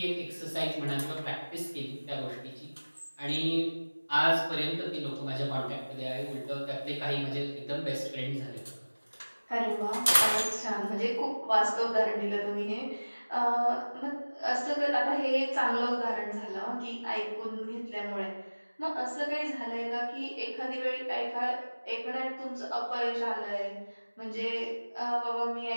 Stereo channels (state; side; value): inverted; both; correlation -1.00